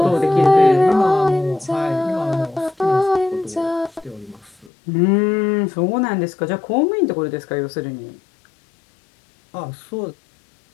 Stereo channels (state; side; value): drops out; right; at 4.7 s